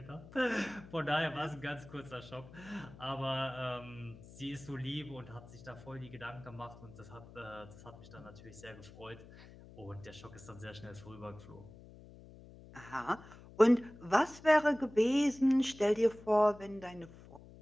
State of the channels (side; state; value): left; noise; hum, 19 dB below the sound